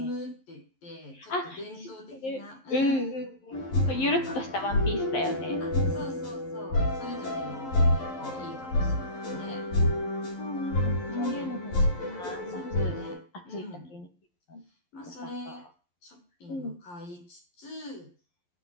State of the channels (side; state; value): right; late; 11 ms